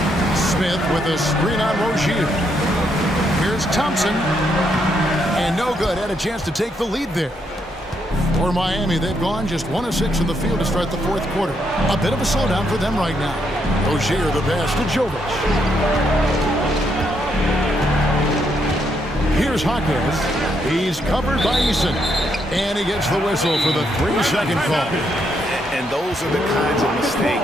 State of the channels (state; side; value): normal; both; correlation 0.76